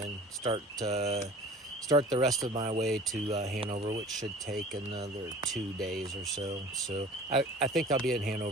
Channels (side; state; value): both; normal; correlation 0.44